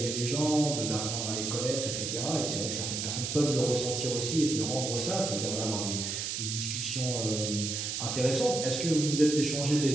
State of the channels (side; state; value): right; noise; hiss, 3 dB below the sound